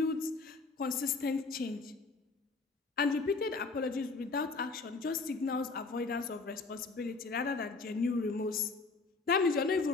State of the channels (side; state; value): right; quieter; 4.0 dB